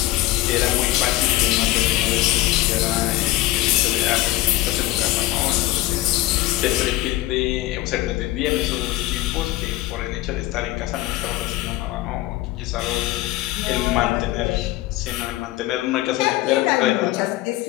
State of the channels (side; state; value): right; quieter; 17.1 dB